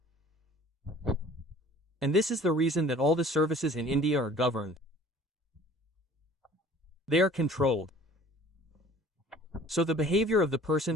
And this is the reason that all the services in India are governed. They are controlled. So the behavior of the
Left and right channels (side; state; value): both; normal; correlation 0.49